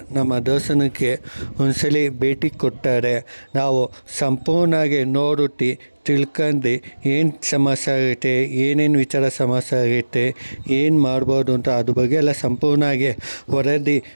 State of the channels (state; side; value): inverted; both; correlation -1.00